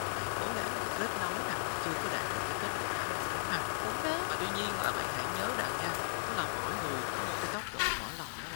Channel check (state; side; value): silent; right; digital silence